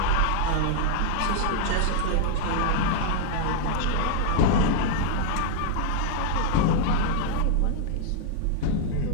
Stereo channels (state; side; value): different; both; correlation 0.00